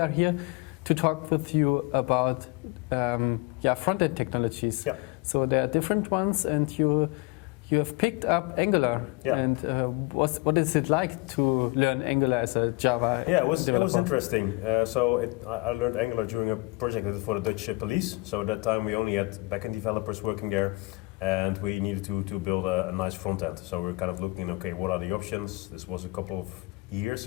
here to talk with you about front-end technologies. Yeah. So there are different ones, and you have picked up Angular. Yeah. And what is it like to learn Angular as a Java Yeah, it was developer? interesting. I learned Angular during a project I did for the Dutch police. So at that time we only had backend developers working there, and we needed to build a nice front end. So we were kind of looking, okay, what are the options? This was a couple of years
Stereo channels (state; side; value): quieter; right; 24.7 dB